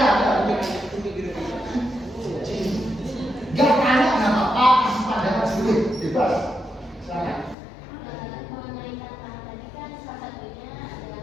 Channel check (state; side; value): drops out; right; at 7.6 s